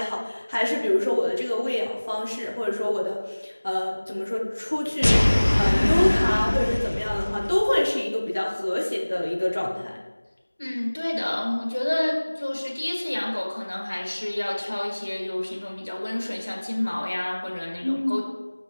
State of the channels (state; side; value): inverted; both; correlation -1.00